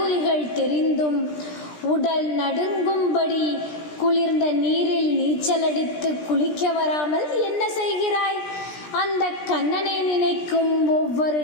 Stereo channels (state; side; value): late; right; 17 ms